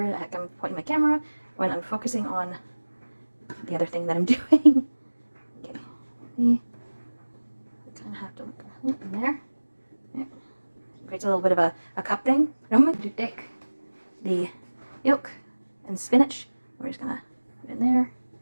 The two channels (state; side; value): inverted; both; correlation -1.00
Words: the heck I'm pointing my camera when I'm focusing on the other thing that I'm doing. Okay, we kind of have to look in there. Yeah. Creates a little bit of a cup thing. I'm going to take the yolk and spinach. We're just gonna put it in there,